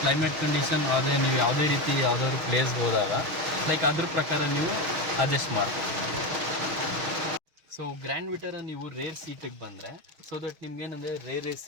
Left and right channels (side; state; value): left; late; 6.4 ms